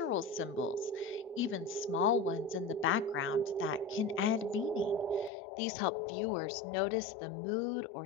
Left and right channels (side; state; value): right; drops out; at 5.3 s